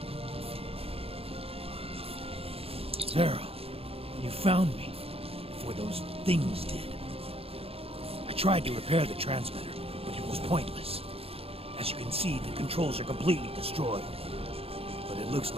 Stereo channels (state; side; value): late; left; 0.28 ms